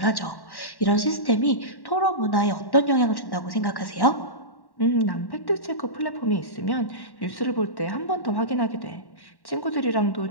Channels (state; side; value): late; right; 1.1 ms